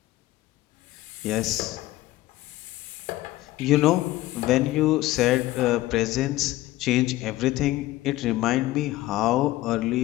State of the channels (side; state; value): right; quieter; 16.9 dB